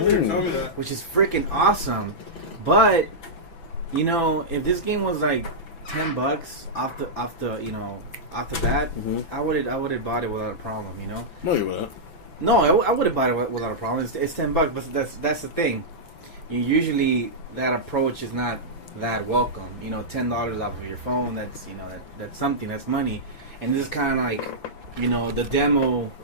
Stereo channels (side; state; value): right; late; 6.0 ms